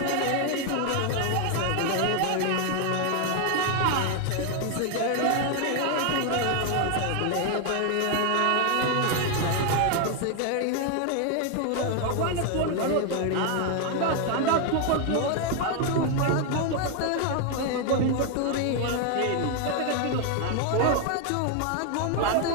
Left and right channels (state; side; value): different; both; correlation 0.00